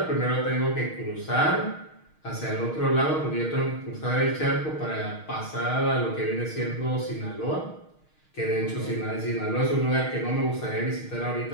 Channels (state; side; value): late; right; 6.4 ms